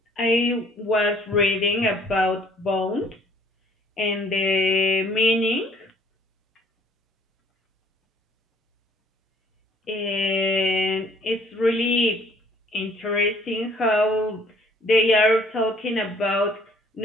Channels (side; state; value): both; normal; correlation 0.59